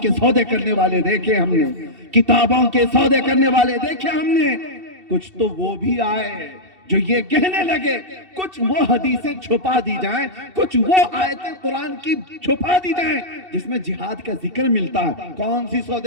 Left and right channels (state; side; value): late; left; 2.7 ms